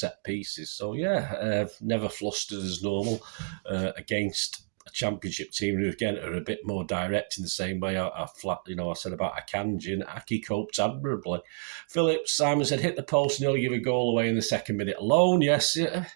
pieces. So yeah, never flustered as normal against a championship team who again are a bit more direct in the same way I said about Akanji, and Ake coped admirably. Phillips, Simon said, hit the post, nearly give a goal away in the second minute alone. Yes,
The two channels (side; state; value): left; silent; digital silence